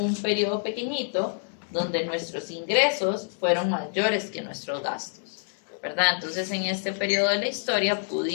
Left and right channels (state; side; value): silent; right; digital silence